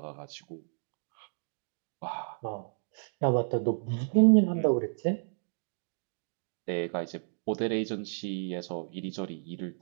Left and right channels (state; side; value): silent; left; digital silence